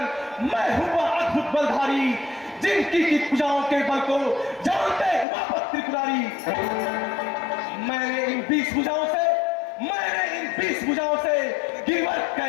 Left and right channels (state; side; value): drops out; right; at 5.2 s